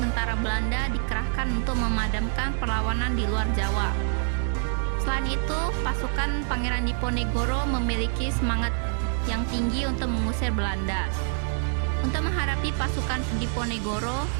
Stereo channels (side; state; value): left; silent; 61 dB below the other